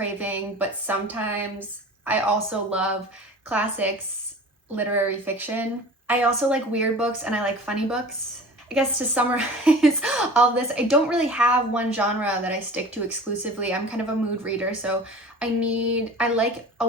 but sometimes I also love classics, literary fiction. I also like weird books and I like funny books. I guess to summarize all of this, I don't really have one genre that I stick to exclusively. I'm kind of a mood reader, so I like a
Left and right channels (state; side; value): normal; both; correlation 0.40